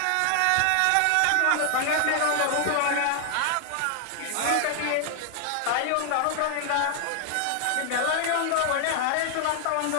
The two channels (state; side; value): different; both; correlation 0.00